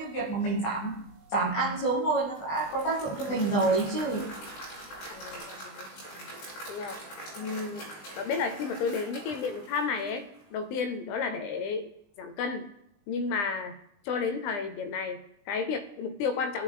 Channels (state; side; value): late; right; 20 ms